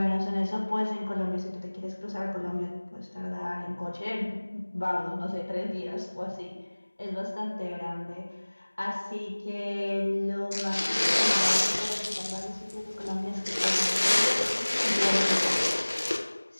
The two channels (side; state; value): both; inverted; correlation -1.00